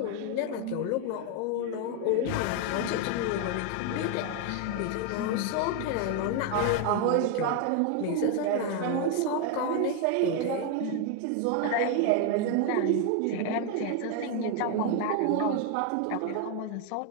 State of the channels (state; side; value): different; both; correlation 0.01